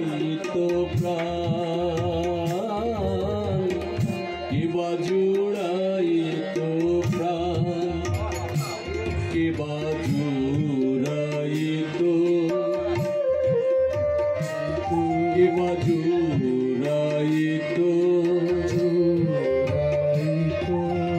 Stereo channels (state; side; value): identical; both; correlation 1.00